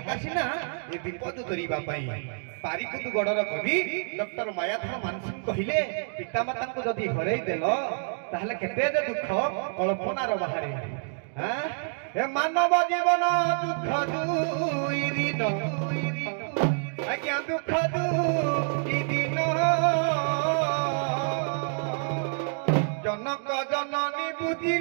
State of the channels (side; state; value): left; silent; digital silence